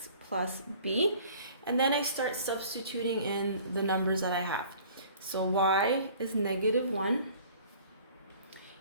plus b, and then I start substituting in the numbers that I have. So y is negative 1,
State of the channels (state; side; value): inverted; both; correlation -0.50